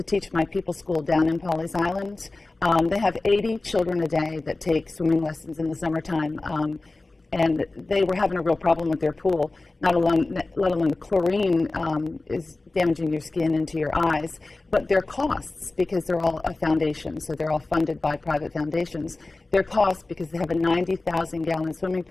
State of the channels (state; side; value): quieter; right; 3.2 dB